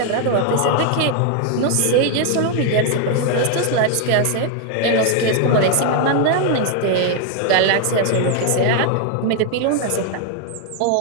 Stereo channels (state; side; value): different; both; correlation 0.01